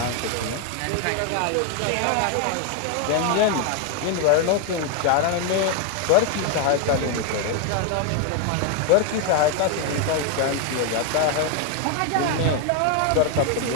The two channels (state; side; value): different; both; correlation 0.01